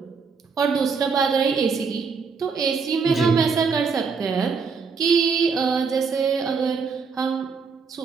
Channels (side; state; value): left; quieter; 5.3 dB